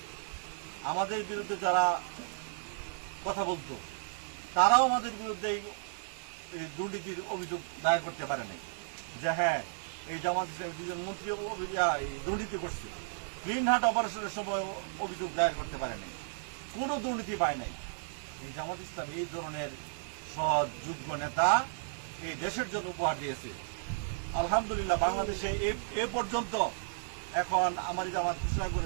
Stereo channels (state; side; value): silent; left; 55 dB below the other